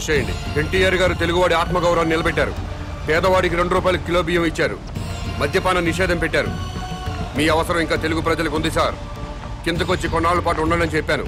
చేయండి. ఎన్టీఆర్ గారు తెలుగువాడి ఆత్మగౌరవాన్ని నిలబెట్టారు. పేదవాడికి 2 రూపాయలు కిలో బియ్యం ఇచ్చారు. మద్యపాన నిషేధం పెట్టారు. మీ అవసరం ఇంకా తెలుగు ప్రజలకు ఉంది సార్. కిందకొచ్చి కొన్నాళ్ళ పాటు ఉండాలని చెప్పాను,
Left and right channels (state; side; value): identical; both; correlation 1.00